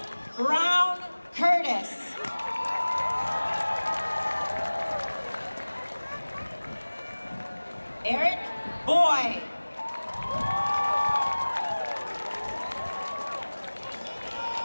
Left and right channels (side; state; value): both; inverted; correlation -1.00